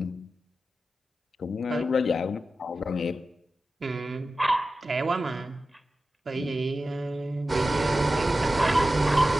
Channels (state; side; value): normal; both; correlation 0.93